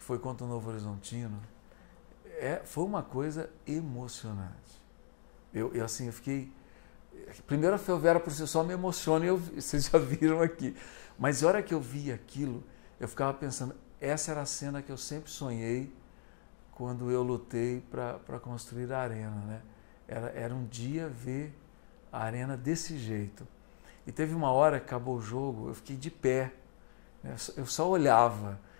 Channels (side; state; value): right; silent; digital silence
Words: foi contra o Novo Horizontino, foi uma coisa emocionante. Eu fiquei... Primeiro a Ferroviária por si só me emociona, vocês já viram aqui. Mas a hora que eu vi aquilo, eu ficava pensando, essa era a cena que eu sempre sonhei quando eu lutei para construir a arena, né? Era um dia ver a arena desse jeito. E teve uma hora que acabou o jogo, eu fiquei de pé, né? Eu só olhava.